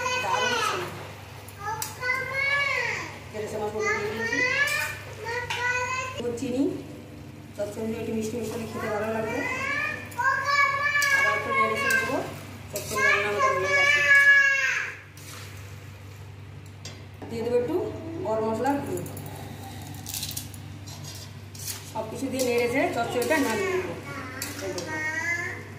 দারুণ ছিল। চিনি, চচ্চড়ি একটু মিষ্টি মিষ্টি খেতে ভালো লাগবে। আবার একটু নেড়ে চেড়ে দেবো। চচ্চড়ি রান্না আমাদের হয়ে গেছে। দিয়ে দেবো একটু গরম মশলার গুঁড়ো। সব কিছু দিয়ে নেড়ে চেড়ে চচ্চড়িটা নামিয়ে দেবো।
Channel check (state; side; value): identical; both; correlation 1.00